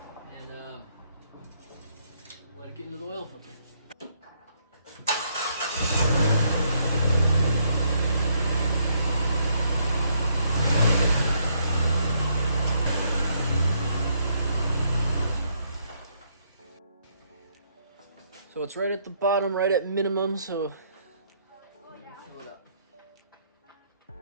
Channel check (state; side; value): inverted; both; correlation -0.72